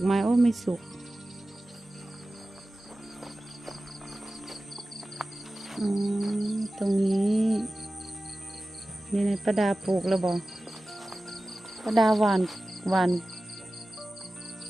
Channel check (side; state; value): both; normal; correlation 0.96